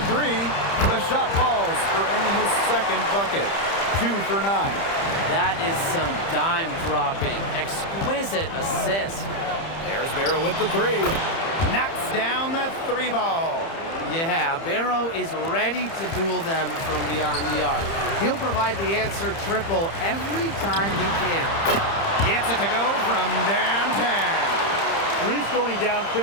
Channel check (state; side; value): late; right; 30 ms